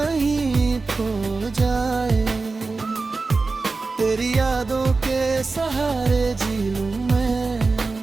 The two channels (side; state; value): left; quieter; 3.9 dB